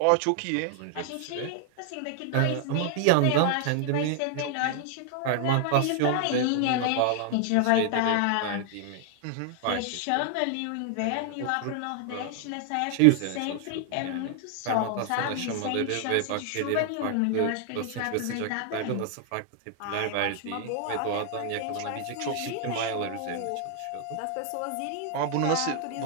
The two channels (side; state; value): both; different; correlation 0.00